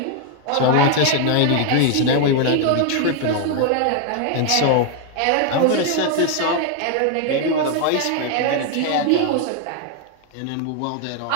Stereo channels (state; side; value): different; both; correlation 0.01